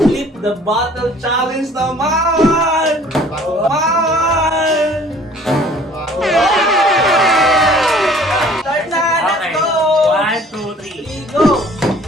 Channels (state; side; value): normal; both; correlation 0.53